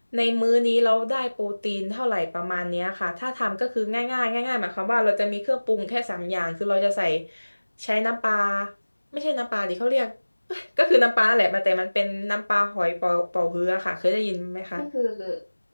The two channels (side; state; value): both; inverted; correlation -1.00